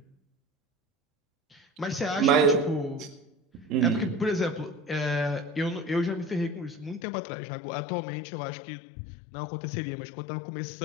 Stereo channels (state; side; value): drops out; right; at 7.0 s